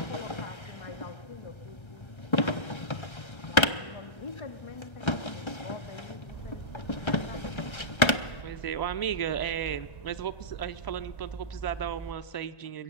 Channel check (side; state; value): right; late; 1.3 ms